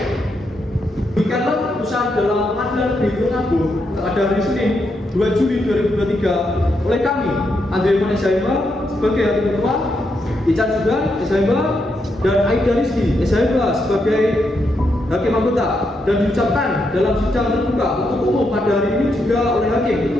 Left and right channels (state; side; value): normal; both; correlation 0.81